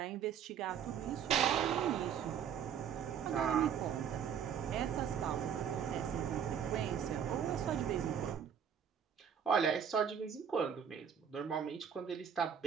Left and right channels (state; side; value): quieter; left; 8.1 dB